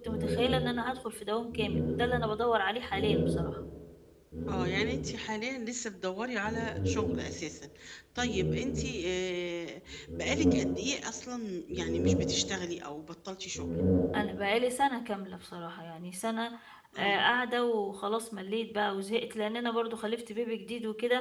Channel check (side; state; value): both; identical; correlation 1.00